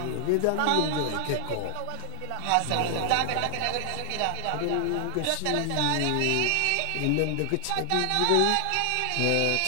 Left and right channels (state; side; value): different; both; correlation 0.00